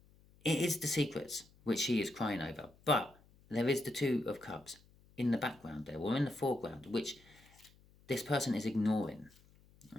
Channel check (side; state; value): left; noise; hum, 28 dB below the sound